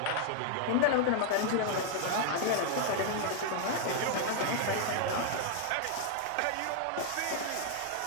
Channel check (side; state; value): both; different; correlation 0.00